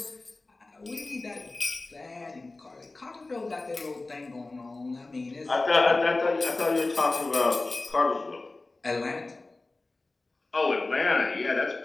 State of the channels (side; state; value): right; quieter; 3.2 dB